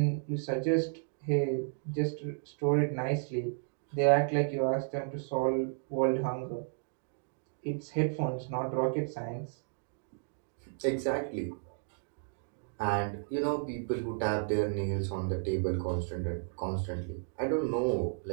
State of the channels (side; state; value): left; silent; digital silence